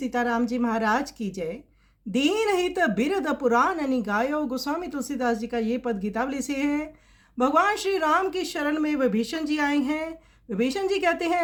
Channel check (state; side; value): identical; both; correlation 1.00